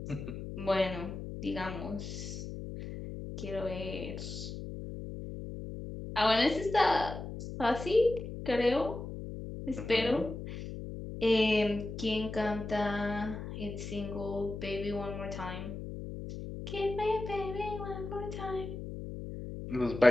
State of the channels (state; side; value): noise; left; hum, 8 dB below the sound